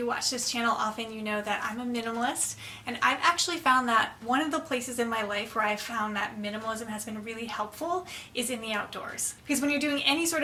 watch this channel often, you know that I'm a minimalist, and I've actually found that one of the places in my life where I've found that minimalism has been really helpful is in the outdoors. Because when you're doing any sort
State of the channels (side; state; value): both; identical; correlation 1.00